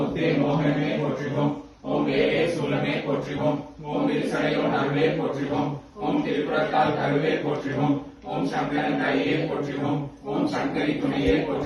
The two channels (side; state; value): both; identical; correlation 1.00